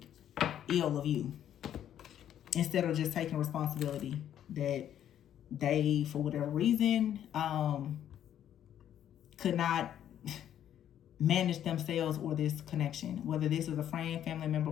ill of you, instead of just taking responsibility that they, for whatever reason, could not manage themselves or this connection. Whether this is a friend, family member,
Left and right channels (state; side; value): quieter; right; 10.5 dB